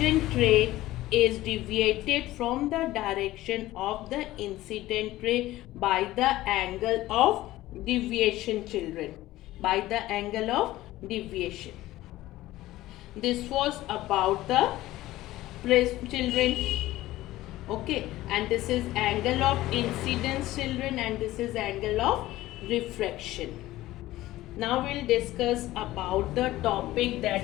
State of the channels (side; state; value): right; quieter; 16.3 dB